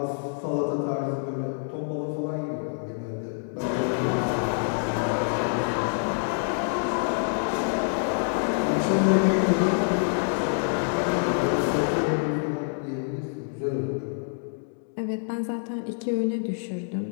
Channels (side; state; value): right; silent; digital silence